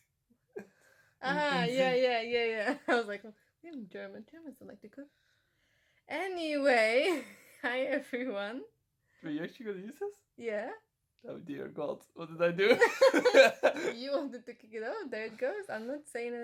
Yeah. I was like, we're in German. Germans don't like to cook. Anyway, hi everyone. Were you actually gonna use this? Yeah. Oh dear God, what did I do? You wanted to kick it off. There it goes. I'm not saying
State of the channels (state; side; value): identical; both; correlation 1.00